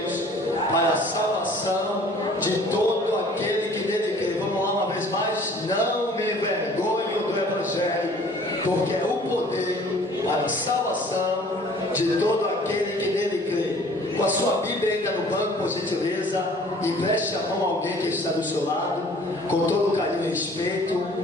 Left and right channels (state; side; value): normal; both; correlation 0.52